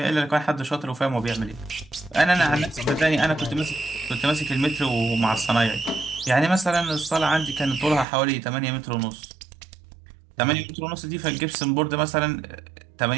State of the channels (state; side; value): drops out; left; at 8.1 s